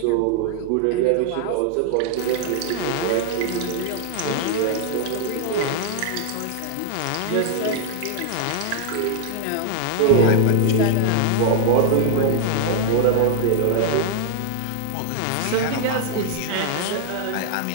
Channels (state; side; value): different; both; correlation 0.00